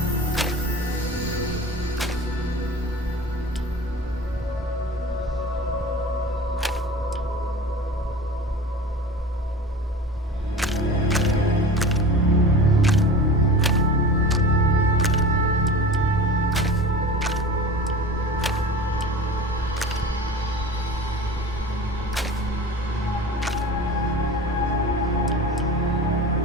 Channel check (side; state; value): both; normal; correlation 0.35